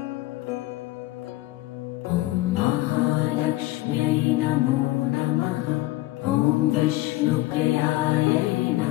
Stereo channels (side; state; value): right; quieter; 18.2 dB